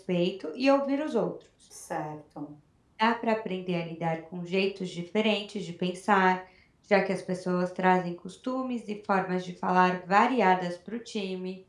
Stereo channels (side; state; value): both; identical; correlation 1.00